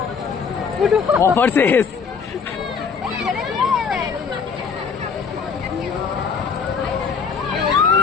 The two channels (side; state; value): right; quieter; 5.9 dB